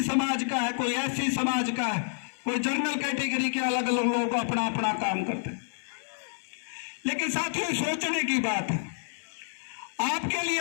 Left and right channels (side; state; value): right; silent; 57 dB below the other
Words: समाज का है, कोई एससी समाज का है, कोई जनरल कैटेगरी के अलग अलग लोग अपना अपना काम करते हैं। लेकिन साथियों, सोचने की बात है, आपके लिए